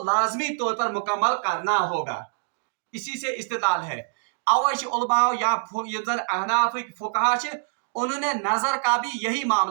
लाजमी तौर पर मुकम्मल करना होगा। इसी से इस्तिदलाल है। अवश्य उलमा या अहनाफ फुकहा उन्होंने नजर का भी यही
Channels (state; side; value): silent; left; digital silence